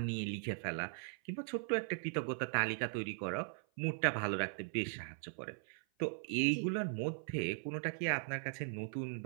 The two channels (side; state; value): left; silent; 52 dB below the other